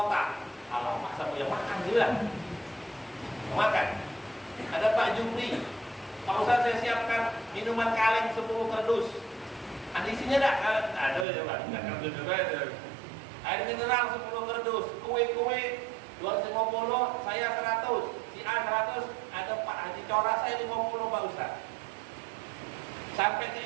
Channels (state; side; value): drops out; left; at 11.2 s